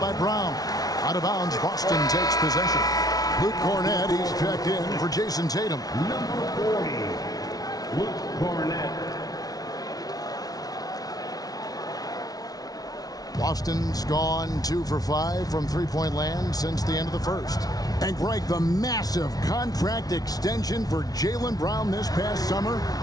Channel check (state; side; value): late; right; 0.18 ms